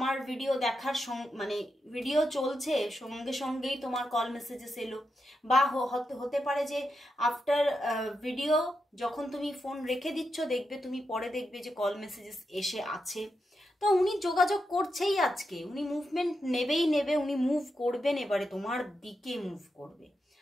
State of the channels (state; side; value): normal; both; correlation 0.86